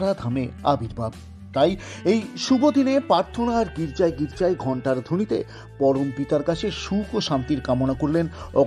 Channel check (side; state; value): both; identical; correlation 1.00